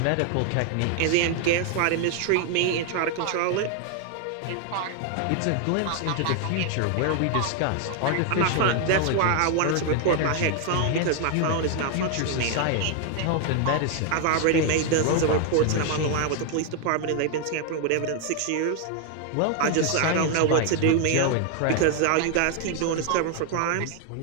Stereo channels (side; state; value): both; different; correlation 0.00